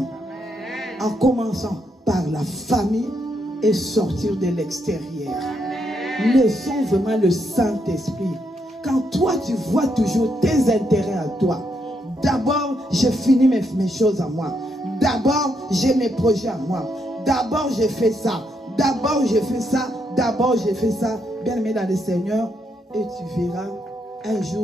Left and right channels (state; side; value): normal; both; correlation 0.78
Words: En commençant par la famille et sortir de l'extérieur. Laissons vraiment le Saint-Esprit. Quand toi tu vois toujours tes intérêts à toi, d'abord je finis mes choses à moi, d'abord j'ai mes projets à moi, d'abord je fais ça, d'abord je fais ça, d'abord je fais ça. Bien aimé dans le Seigneur, et tu verras, un